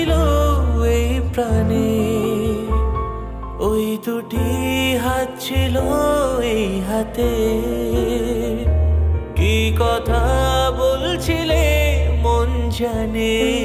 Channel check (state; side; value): identical; both; correlation 1.00